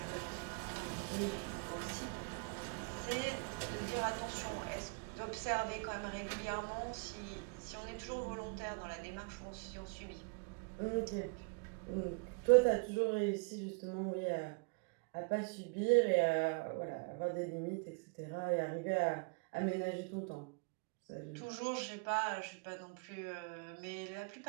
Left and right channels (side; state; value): left; quieter; 34.3 dB